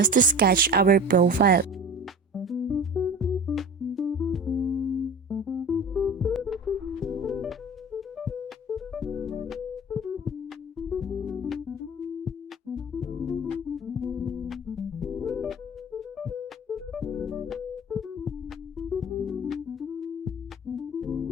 to sketch our profile.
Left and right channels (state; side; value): normal; both; correlation 0.37